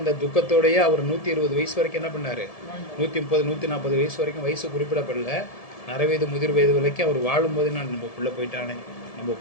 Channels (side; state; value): right; late; 1.7 ms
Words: துக்கத்தோடயே அவர் 120 வயசு வரைக்கும் என்ன பண்ணாரு, 130 140 வயசு வரைக்கும் வயசு குறிப்பிடப்படல, நரவயது முதிர் வயது வரைக்கும் அவர் வாழும்போது நான் நம்ம பிள்ளை போயிட்டானே, நம்ம